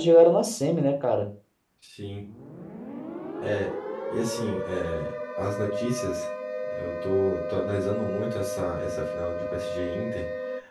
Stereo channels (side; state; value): both; identical; correlation 1.00